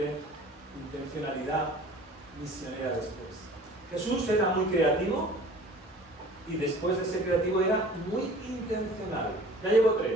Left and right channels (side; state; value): both; normal; correlation 0.47